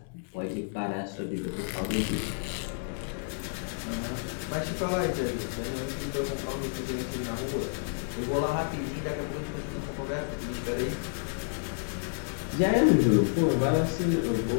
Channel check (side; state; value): right; silent; digital silence